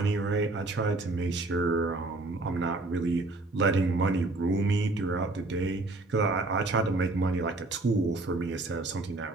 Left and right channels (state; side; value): quieter; left; 3.0 dB